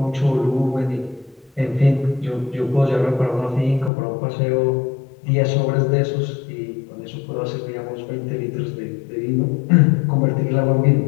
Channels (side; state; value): right; drops out; at 3.9 s